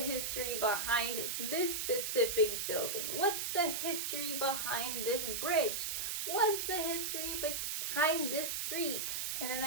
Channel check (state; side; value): noise; right; hiss, 1 dB below the sound